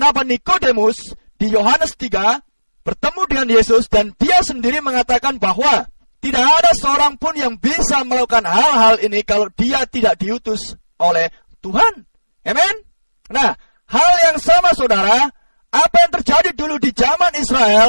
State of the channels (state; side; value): inverted; both; correlation -1.00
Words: Nikodemus di Yohanes 3 bertemu dengan Yesus, dan dia sendiri mengatakan bahwa tidak ada seorang pun yang bisa melakukan hal-hal ini kalau dia tidak diutus oleh Tuhan. Amin. Nah, hal yang sama saudara, apa yang terjadi dulu di zaman